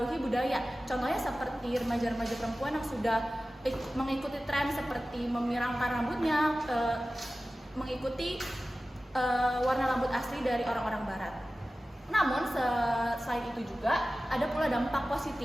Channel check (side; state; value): both; normal; correlation 0.96